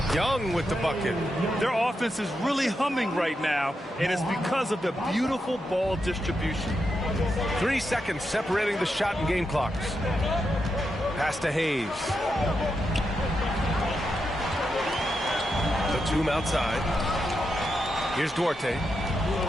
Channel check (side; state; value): both; normal; correlation 0.85